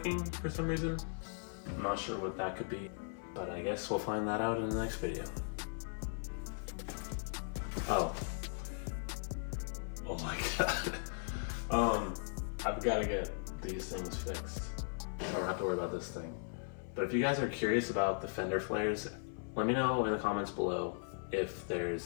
for some reason. I'm not sure what that could be, but I guess we'll find that out in the next video. Oh my god. I've got to get these things fixed. I don't have to worry about this thing. But if you guys are curious about the fender flares, let me know in the comments below if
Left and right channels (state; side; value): silent; right; 52 dB below the other